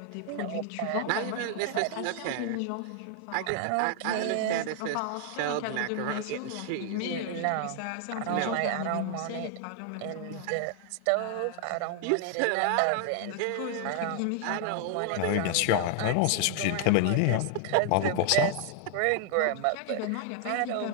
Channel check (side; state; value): both; different; correlation 0.00